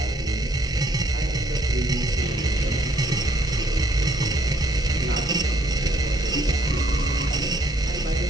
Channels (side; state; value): both; normal; correlation 0.66